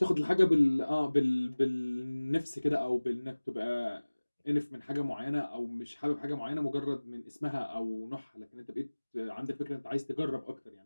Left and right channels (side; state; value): both; inverted; correlation -1.00